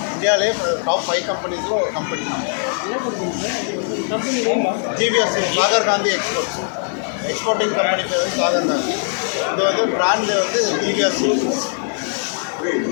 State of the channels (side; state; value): right; silent; digital silence